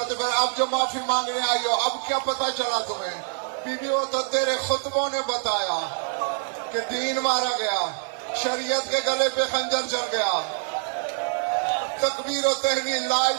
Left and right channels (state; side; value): silent; left; 62 dB below the other